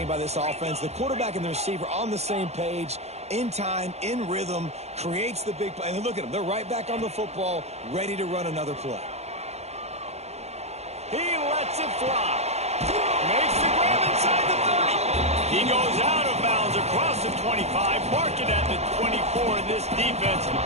by this offense. The quarterback and the receiver on the same page, in time, in rhythm, creates the big play. And look at them. They're right back on the football, ready to run another play. He lets it fly. Makes the grab inside the 30. He goes out of bounds across the 25, mark it at the 24. In this defense,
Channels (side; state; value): left; late; 0.31 ms